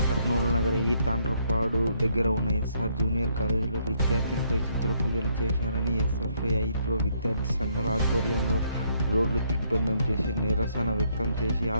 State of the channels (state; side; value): inverted; both; correlation -0.71